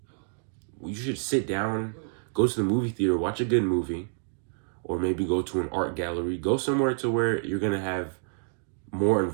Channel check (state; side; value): silent; left; digital silence